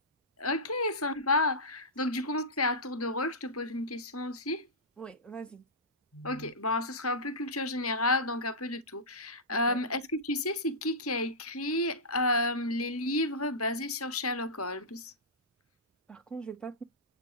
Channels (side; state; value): both; normal; correlation -0.15